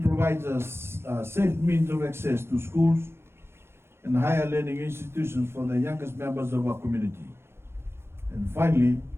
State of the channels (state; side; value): late; left; 0.12 ms